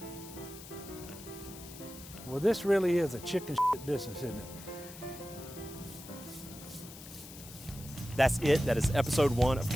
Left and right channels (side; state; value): left; noise; hiss, 15 dB below the sound